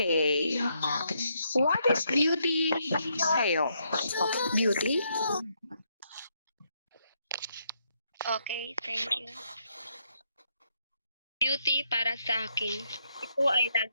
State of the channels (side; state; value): both; inverted; correlation -0.76